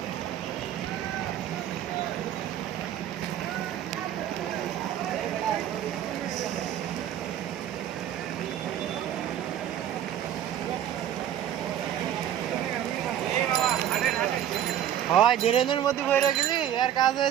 হয় ড্রেনের মধ্যে ভরে গেলি আর কাজ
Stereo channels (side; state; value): left; quieter; 10.8 dB